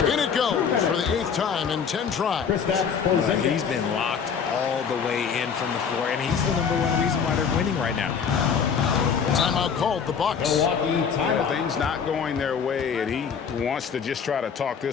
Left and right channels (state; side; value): quieter; right; 6.7 dB